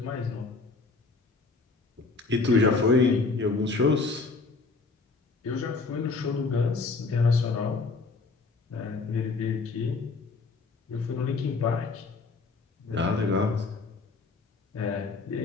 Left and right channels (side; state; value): right; quieter; 4.0 dB